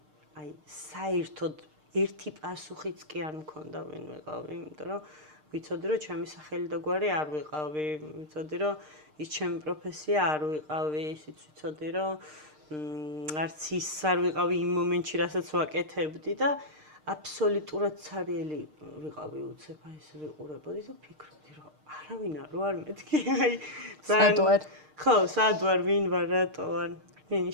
აი საერთოდ ერთი პასუხიც კი არ მქონდა ვინ ვიყავი, იმიტომ რომ ვიცოდი რომ ჩემი სახელი და გვარი არ ვიყავი, ვიცოდი რომ ის ჩემი პროფესია არ ვიყავი, ისიც ვიცოდი რომ არც ის არ ვიყავი იმ მომენტში, რასაც ვაკეთებდი და აბსოლუტურად ცარიელი ვიყავი უცებ, აი ეს ვიყურებოდი და ფიქრობდი რომ არავინ არ მეთქი, აი ძალიან ხო, სად ვარ, ვინ ვარ, რატო ვარ? ვინი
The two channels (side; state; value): left; late; 6.6 ms